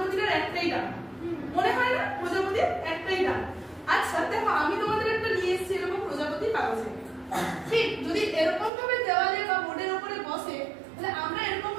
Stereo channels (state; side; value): drops out; left; at 8.7 s